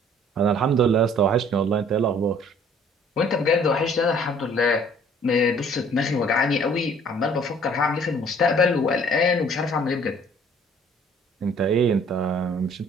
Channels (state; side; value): normal; both; correlation 0.56